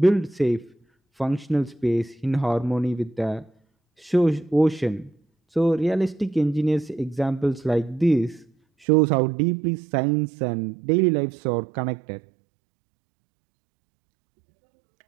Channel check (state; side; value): drops out; left; at 8.8 s